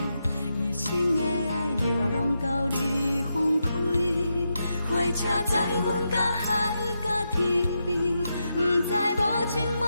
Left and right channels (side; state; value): both; inverted; correlation -0.85